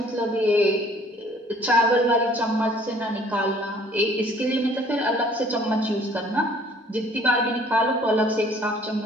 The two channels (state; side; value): normal; both; correlation 0.56